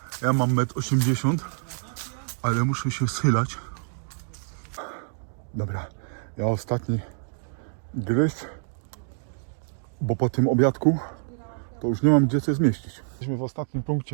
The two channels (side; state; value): left; silent; digital silence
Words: Ja mam 1,80 m, ale muszę się schylać. Dobra, ja ostatni gryz, bo po tym obiadku to już nie mam gdzie coś zmieścić. Jesteśmy w ostatnim